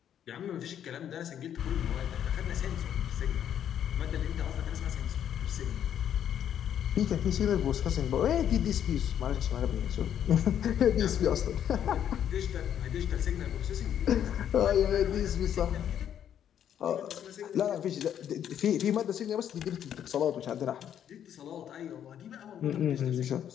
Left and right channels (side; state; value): right; quieter; 9.7 dB